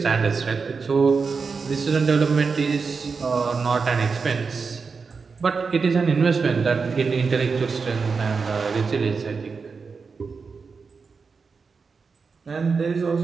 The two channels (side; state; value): left; quieter; 5.0 dB